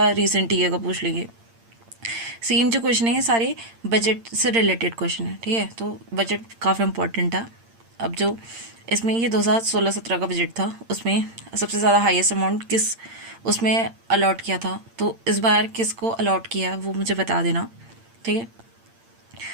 रिसेंट ईयर का पूछ लेंगे। सेम जो क्वेश्चन है ये सारे बजट से रिलेटेड क्वेश्चन है। ठीक है, तो बजट काफ़ी इंपॉर्टेंट था। अब जो इसमें ये 2016-17 का बजट था, उसमें सबसे ज़्यादा हाईएस्ट अमाउंट किस उसमें अलॉट किया था, तो इस बार किसको अलॉट किया वो मुझे बता देना। ठीक है,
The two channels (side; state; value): left; late; 8.7 ms